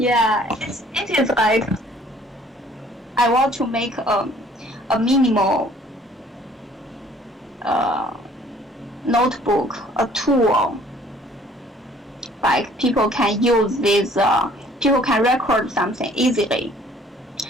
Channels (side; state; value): both; normal; correlation 0.57